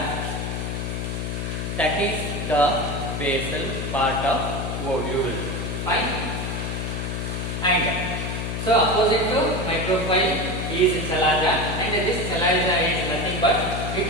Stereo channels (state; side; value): noise; left; hum, 3 dB below the sound